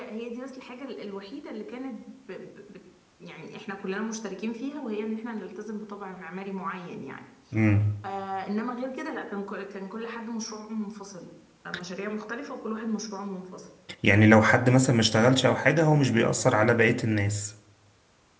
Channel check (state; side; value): identical; both; correlation 1.00